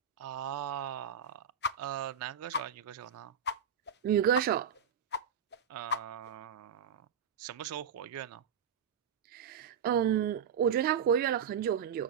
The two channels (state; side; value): quieter; left; 7.3 dB